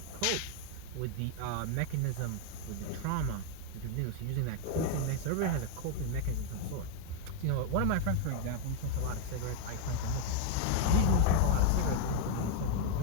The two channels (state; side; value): different; both; correlation 0.00